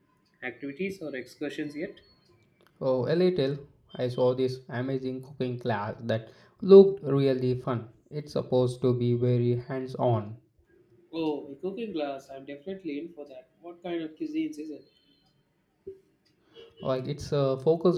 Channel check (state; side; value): identical; both; correlation 1.00